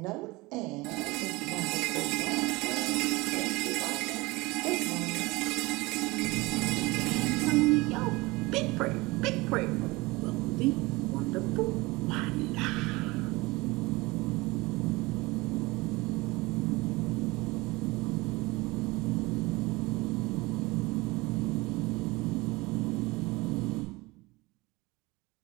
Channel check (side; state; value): left; quieter; 22.6 dB